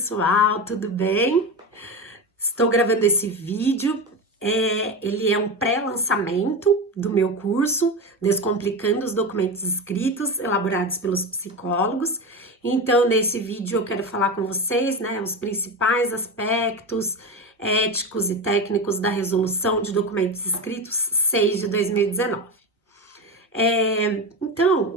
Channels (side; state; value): both; normal; correlation 0.21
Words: tudo bem? Estou gravando esse vídeo. Ele é um pré-lançamento do meu curso Descomplicando os Documentos Escritos, elaborados pelos psicólogos. Então, nesse vídeo eu quero falar com vocês, né, os principais aspectos éticos e técnicos da Resolução de Documentos Escritos 6 de 2019. Então,